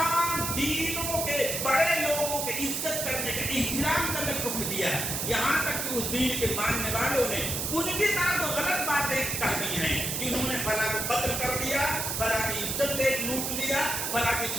دینوں کے بڑے لوگوں کے عزت کرنے کا، احترام کرنے کا حکم دیا ہے. یہاں تک کہ اس دین کے ماننے والوں نے ان کی طرح تو غلط باتیں کہہ دی ہیں کہ انہوں نے فلاں کو قتل کر دیا، فلاں کی عزت لوٹ لیا، فلاں کی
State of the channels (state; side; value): noise; right; hiss, 1 dB below the sound